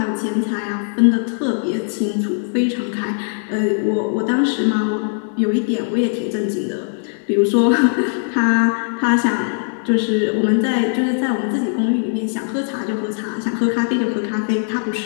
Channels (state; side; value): silent; right; digital silence